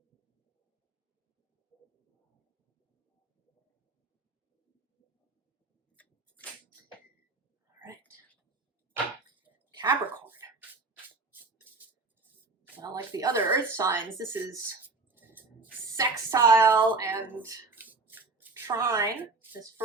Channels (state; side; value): quieter; left; 3.7 dB